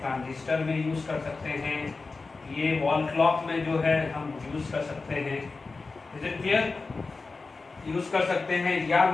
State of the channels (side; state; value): right; quieter; 4.0 dB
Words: ट्रांजिस्टर में यूज कर सकते हैं। ये वॉल क्लॉक में जो है हम यूज कर सकते हैं। इज इट क्लियर, यूज कर सकते हैं। या